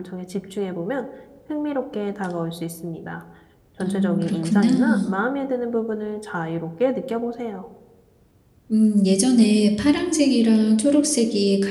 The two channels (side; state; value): both; identical; correlation 1.00